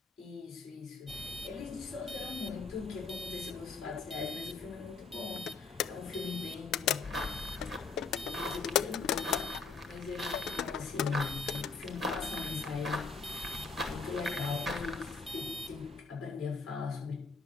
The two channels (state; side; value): quieter; right; 4.6 dB